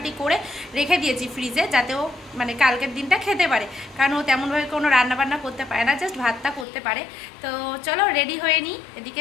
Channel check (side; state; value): right; drops out; at 6.7 s